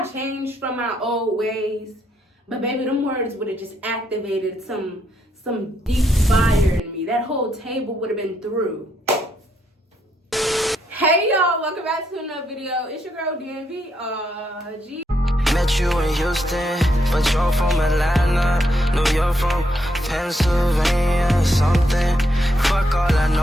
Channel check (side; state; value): both; normal; correlation 0.77